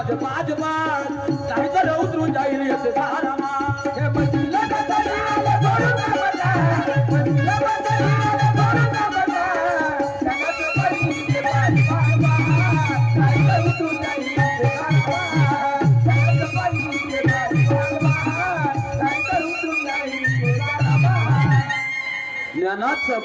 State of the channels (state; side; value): identical; both; correlation 1.00